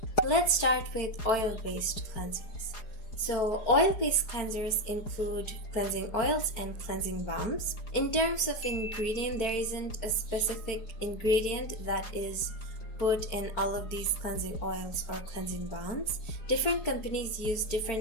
Let's start with oil-based cleansers. So, oil-based cleansers include cleansing oils and cleansing balms. In terms of ingredient, there isn't a specific ingredient that is put in all of these cleansing oils or cleansing balms. Different companies use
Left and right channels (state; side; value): late; right; 4.8 ms